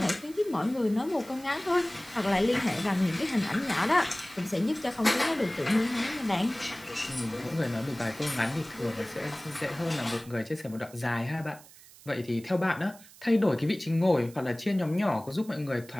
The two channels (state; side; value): noise; right; hiss, 22 dB below the sound